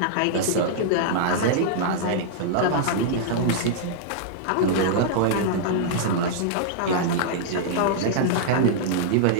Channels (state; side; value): different; both; correlation -0.02